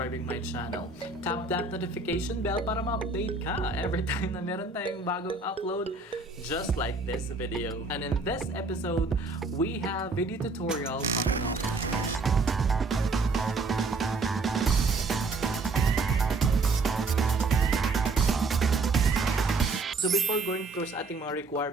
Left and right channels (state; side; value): quieter; left; 3.7 dB